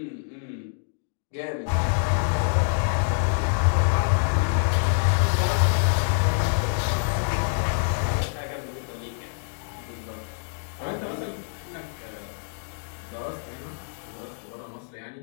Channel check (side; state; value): right; silent; digital silence